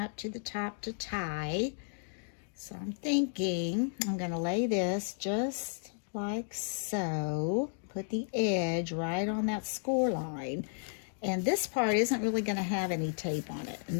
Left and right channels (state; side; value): silent; right; digital silence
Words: to the top to tie. So I'm thinking I'm going to lay this just like so. Put the edge right on that score line. And this part isn't really going to have any tape on it. And